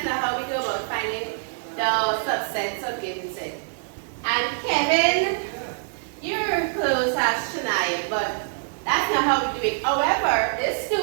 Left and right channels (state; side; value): silent; left; 59 dB below the other